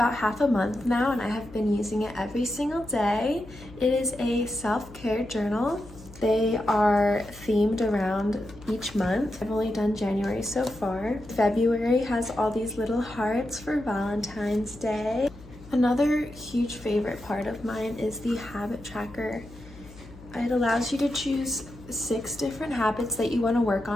half a month now, and I have been using it every single day. It is a self-care journal. They are themed around each month. I've only done January so far. February has all these little hearts for Valentine's Day. Another huge favorite part of mine is the habit tracker. It allows you to choose 6 different habits that you want to work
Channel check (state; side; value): noise; left; hum, 19 dB below the sound